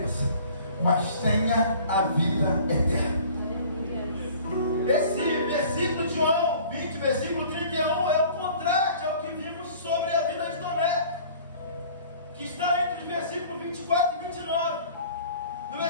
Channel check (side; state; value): both; inverted; correlation -0.48